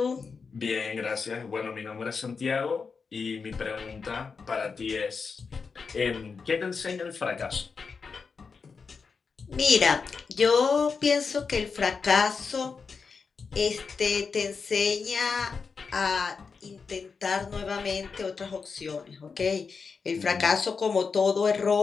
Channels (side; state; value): right; quieter; 5.2 dB